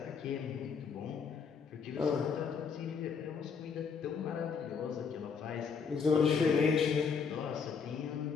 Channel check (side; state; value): right; quieter; 5.9 dB